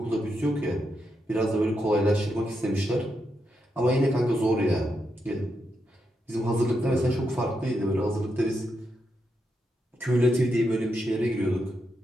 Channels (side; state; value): both; normal; correlation 0.83